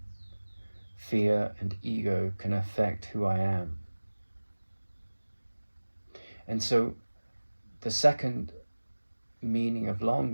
fear and ego can affect who I am. And so the second meaning of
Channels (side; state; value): both; inverted; correlation -1.00